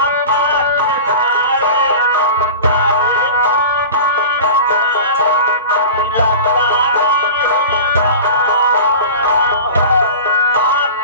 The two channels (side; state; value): both; inverted; correlation -0.34